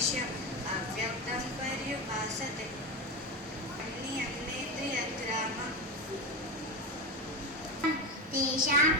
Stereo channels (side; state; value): both; normal; correlation 0.18